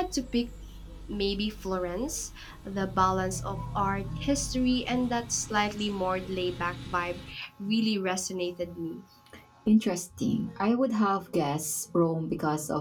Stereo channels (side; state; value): both; identical; correlation 1.00